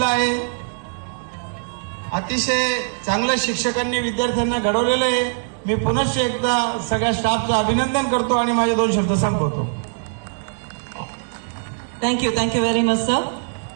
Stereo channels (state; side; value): silent; left; digital silence